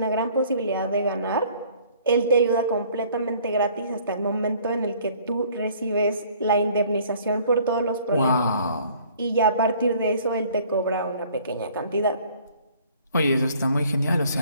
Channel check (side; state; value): both; inverted; correlation -0.56